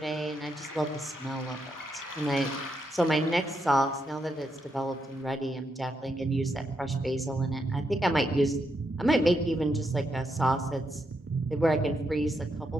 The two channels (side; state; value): both; normal; correlation 0.81